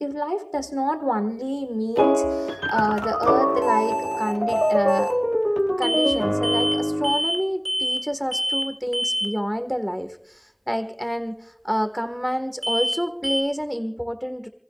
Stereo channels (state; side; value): identical; both; correlation 1.00